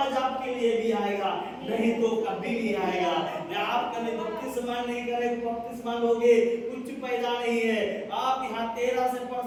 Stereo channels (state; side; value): identical; both; correlation 1.00